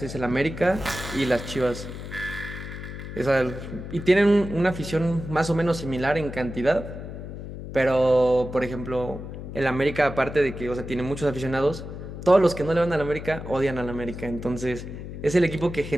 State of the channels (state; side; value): noise; left; hum, 9 dB below the sound